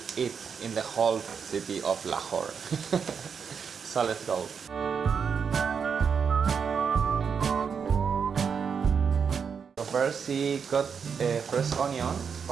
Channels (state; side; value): quieter; left; 6.5 dB